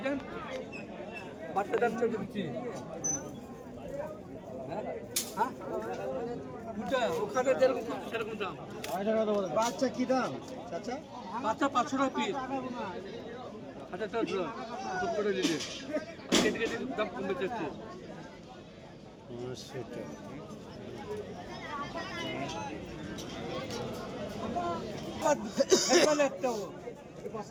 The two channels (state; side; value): identical; both; correlation 1.00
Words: বাচ্চা যাচ্ছে দিচ্ছি ওখানে সেরকম দাম বাচ্চা কি দাম আচ্ছা বাচ্চা 500 টাকা পিস আচ্ছা চল করে দিলে কেটে দাম কমে যাচ্ছে